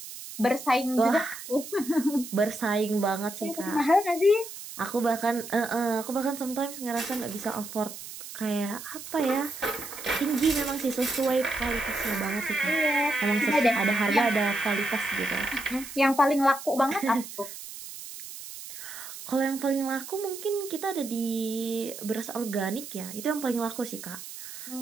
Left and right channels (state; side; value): noise; right; hiss, 12 dB below the sound